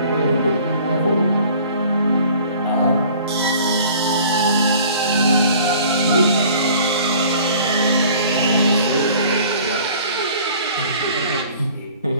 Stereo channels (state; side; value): inverted; both; correlation -0.50